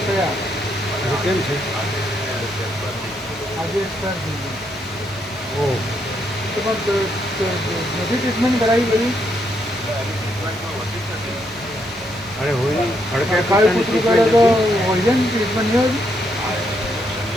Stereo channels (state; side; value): normal; both; correlation 0.76